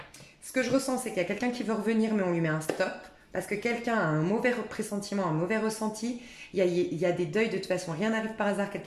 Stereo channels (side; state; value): both; identical; correlation 1.00